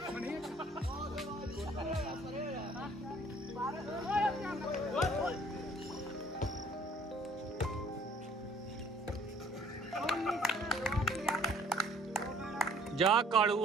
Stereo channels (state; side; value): normal; both; correlation 0.56